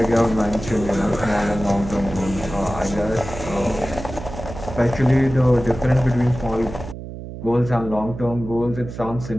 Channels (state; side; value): noise; right; hum, 10 dB below the sound